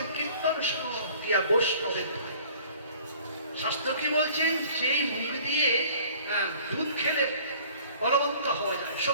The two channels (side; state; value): both; inverted; correlation -0.51